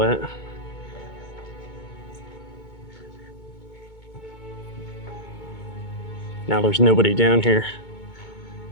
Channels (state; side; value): late; right; 2.2 ms